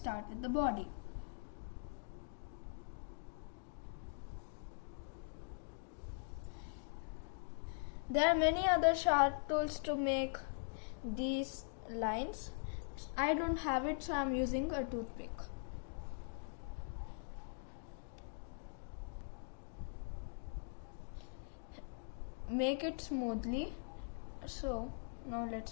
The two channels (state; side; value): silent; right; digital silence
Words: with the body. There are many other sharp tools to make these lines. I don't have it, so I'm using a toothpick. Make it smoothly. So now